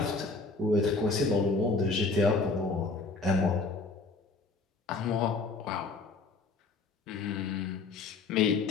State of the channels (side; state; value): right; quieter; 3.8 dB